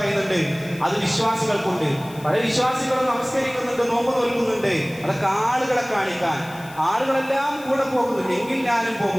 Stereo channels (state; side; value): noise; left; hiss, 21 dB below the sound